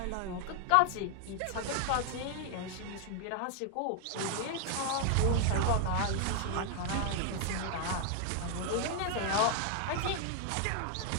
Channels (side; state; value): both; different; correlation 0.00